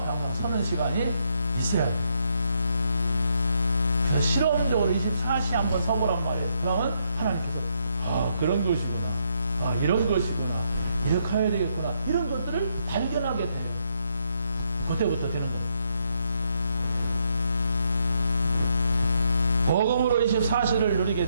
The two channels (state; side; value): inverted; both; correlation -0.76